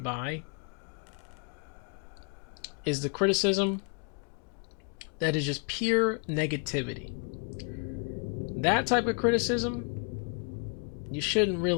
by is the criticism that is just pure negativity. That type of criticism you shouldn't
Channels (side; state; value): right; quieter; 39.1 dB